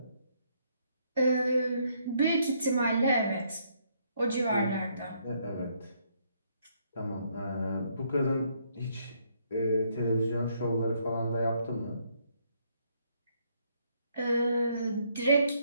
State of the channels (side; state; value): both; inverted; correlation -0.71